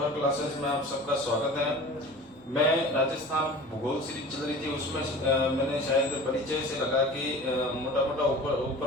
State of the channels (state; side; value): normal; both; correlation 0.39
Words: क्लासेस में आप सबका स्वागत है। मैं राजस्थान भूगोल सीरीज चल रही थी, उसमें मैंने शायद परिचय से लगा कि मोटा मोटा